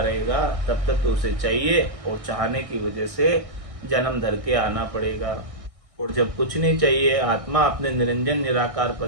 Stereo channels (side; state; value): left; late; 1.6 ms